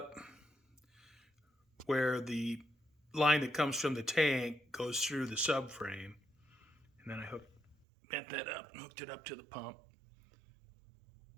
where the line that comes from the tank goes through the subframe, and then I bent that up and hooked it up to the pump.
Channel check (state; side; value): drops out; left; at 7.8 s